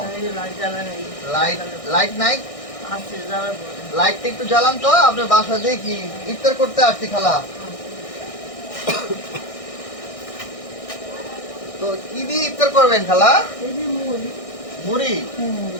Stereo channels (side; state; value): right; late; 1.6 ms